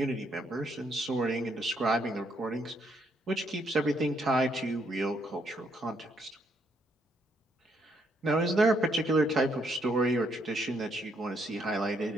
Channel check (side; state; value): both; normal; correlation 0.73